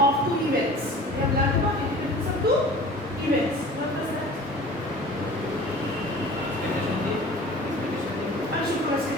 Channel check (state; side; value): normal; both; correlation 0.42